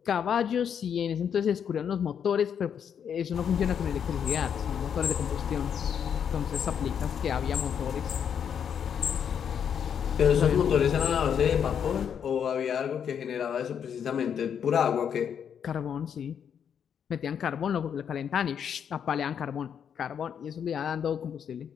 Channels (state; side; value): quieter; right; 8.0 dB